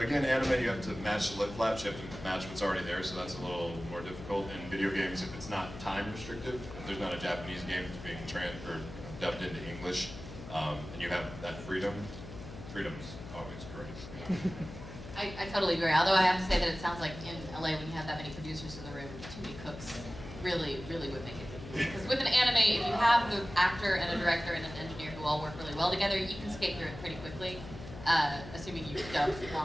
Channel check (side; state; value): left; noise; hum, 12 dB below the sound